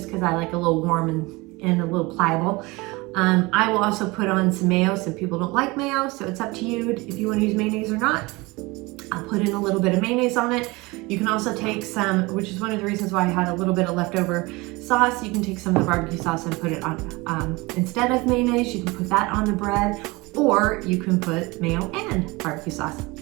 because I like a little warm and a little pliable. I will also put on some mayo. Some people don't like mayo, so it's up to you if you want to use mayonnaise or not. I'll put in a little bit of mayonnaise on it. You can also take some, which is one of the reasons why I had a little bit of leftover sauce. You can take some of the barbecue sauce and put it on, instead of mayonnaise, you can put that on the bread, or you can put mayo and barbecue sauce.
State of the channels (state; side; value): quieter; left; 23.6 dB